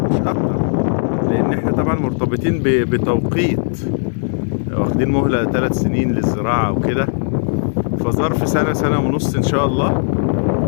مش أكتر، لأن إحنا طبعا مرتبطين بتوقيت، واخدين مهلة 3 سنين للزراعة وكده، فظرف سنة سنة ونص إن شاء الله.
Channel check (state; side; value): silent; right; 61 dB below the other